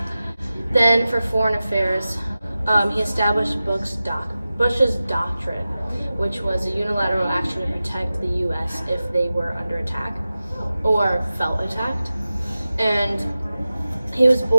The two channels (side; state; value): both; inverted; correlation -0.94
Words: Then for foreign affairs, he established Bush's Doctrine, which was a unilateral action to protect the U.S. if they were under attack or felt attacked. And he was